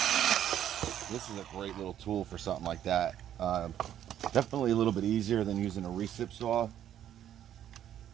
This is a great little tool for something like that. Definitely a little bit easier than using a recip saw.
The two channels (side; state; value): left; quieter; 10.8 dB